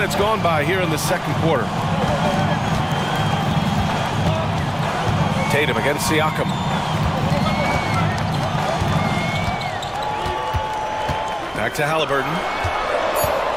gone by here in the second quarter. Tatum against Siakam. Back to Halliburton.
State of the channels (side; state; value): both; identical; correlation 1.00